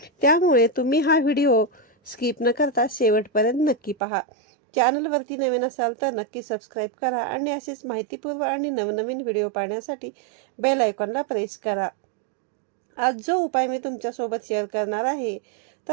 त्यामुळे तुम्ही हा व्हिडिओ स्किप न करता शेवटपर्यंत नक्की पहा. चॅनलवरती नवीन असाल तर नक्की सबस्क्राईब करा आणि असेच माहितीपूर्व आणि नवनवीन व्हिडिओ पाहण्यासाठी बेल आयकॉनला प्रेस करा. आज जो उपाय मी तुमच्यासोबत शेअर करणार आहे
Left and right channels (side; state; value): left; drops out; at 4.0 s